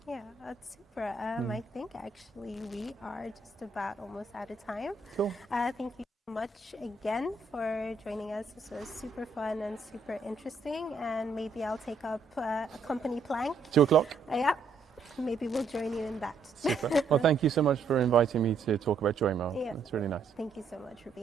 Yeah, that's super. I think actually we are just about almost out of time. Cool. Thank you so much again for joining us. This was super fun and super interesting. And maybe I'll take up a company plank. 2:00. Yeah, maybe we'll join you in that. Super. Well, thank you so much for inviting me to talk about Joymo. Yeah. It's really nice. Thank you so much for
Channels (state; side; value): quieter; left; 4.1 dB